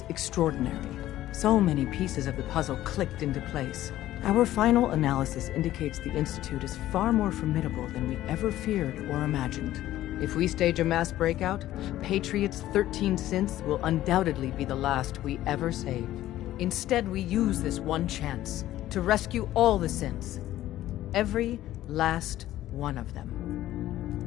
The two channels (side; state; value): right; quieter; 14.1 dB